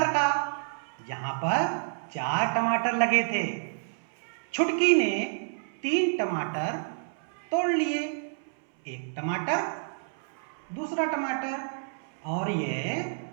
का, जहां पर 4 टमाटर लगे थे। छुटकी ने 3 टमाटर तोड़ लिए, 1 टमाटर, दूसरा टमाटर और ये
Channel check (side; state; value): left; silent; 59 dB below the other